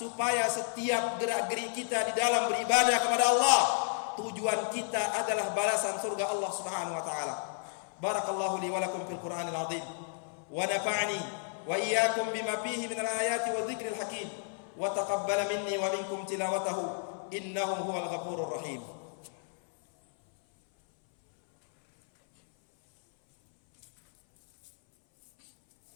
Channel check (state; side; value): silent; right; 57 dB below the other